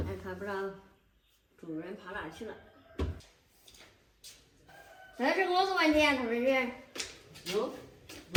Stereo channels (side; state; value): both; identical; correlation 1.00